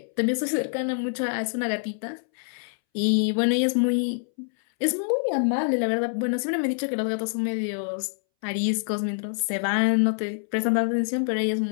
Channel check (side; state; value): right; silent; 61 dB below the other